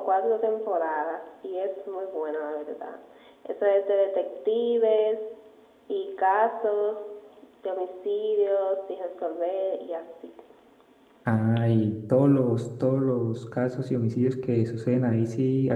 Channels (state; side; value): identical; both; correlation 1.00